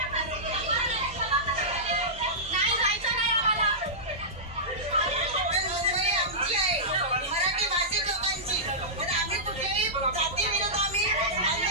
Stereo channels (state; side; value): normal; both; correlation -0.16